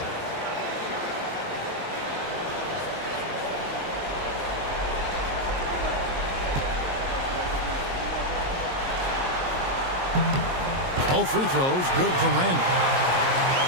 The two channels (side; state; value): left; late; 22 ms